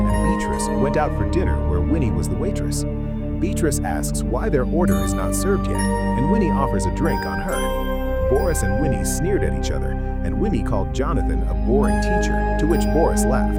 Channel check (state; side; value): identical; both; correlation 1.00